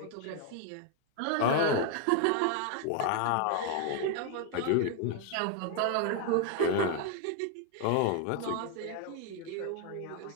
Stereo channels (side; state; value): both; different; correlation 0.01